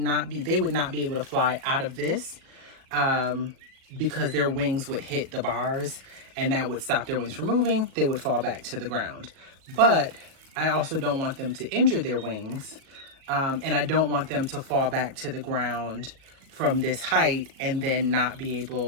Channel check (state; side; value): late; left; 37 ms